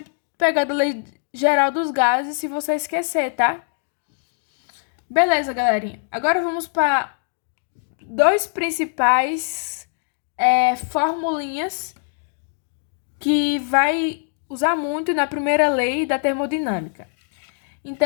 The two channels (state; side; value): silent; right; digital silence